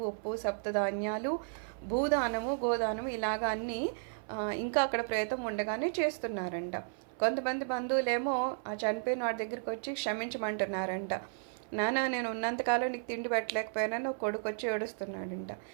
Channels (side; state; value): left; silent; 55 dB below the other